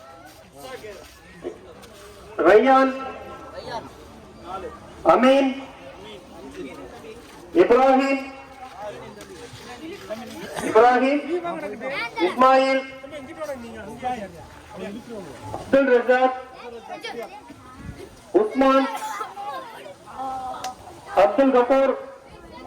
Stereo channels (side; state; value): both; identical; correlation 1.00